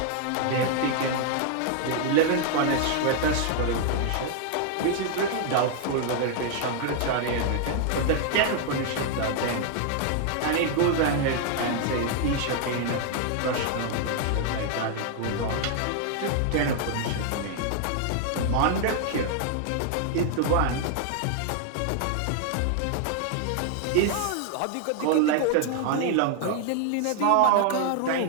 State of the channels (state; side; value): different; both; correlation 0.00